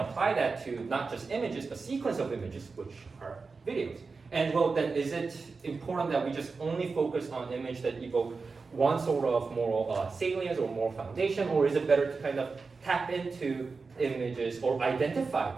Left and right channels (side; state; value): left; quieter; 4.4 dB